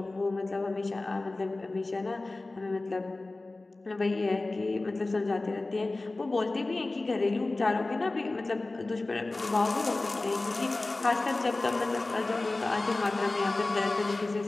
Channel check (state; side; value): quieter; right; 3.1 dB